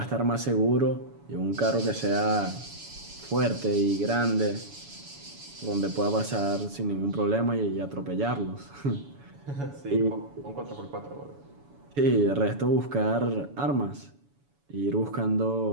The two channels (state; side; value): late; left; 7.1 ms